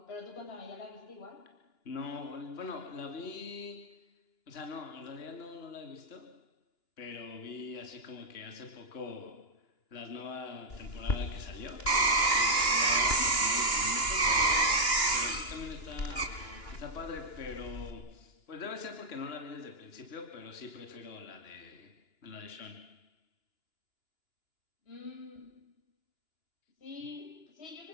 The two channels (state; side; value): late; right; 2.9 ms